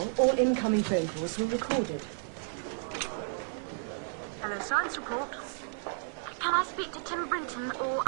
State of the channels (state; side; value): silent; left; digital silence